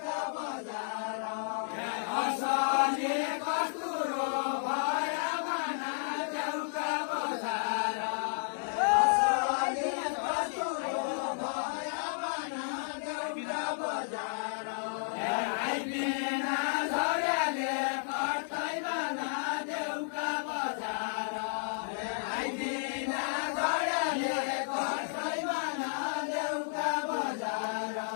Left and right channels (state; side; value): silent; right; digital silence